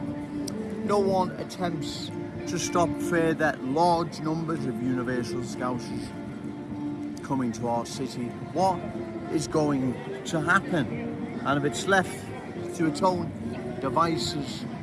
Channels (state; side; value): identical; both; correlation 1.00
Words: No one attempts to stop further large numbers of universal Scousers coming to our city. What is going to happen? And if it's left to its own devices,